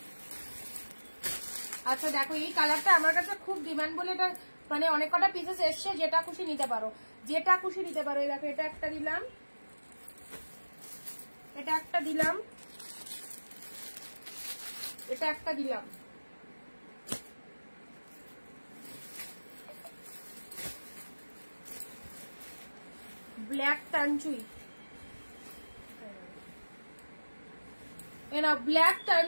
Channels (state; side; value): inverted; both; correlation -1.00